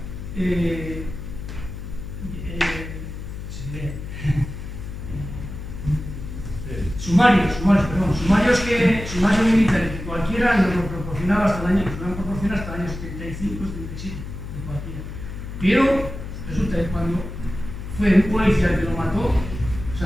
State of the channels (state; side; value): noise; left; hum, 9 dB below the sound